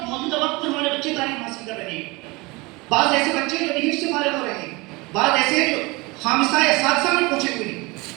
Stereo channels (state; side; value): quieter; left; 24.6 dB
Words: موجودہ وقت میں ہمارے بچے تعلیم حاصل کر رہے ہیں، بعض ایسے بچے جو حفظ سے فارغ ہو رہے ہیں، بعض ایسے ہیں جو خامسہ یا سادسہ میں پہنچے ہوئے ہیں،